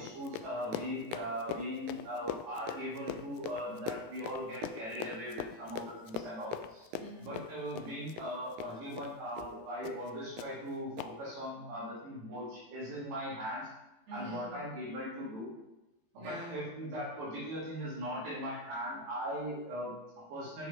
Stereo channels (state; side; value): late; left; 18 ms